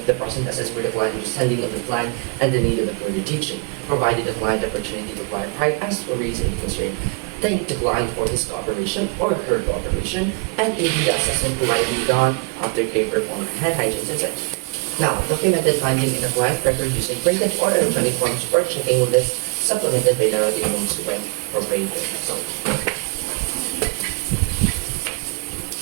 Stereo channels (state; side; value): quieter; left; 31.9 dB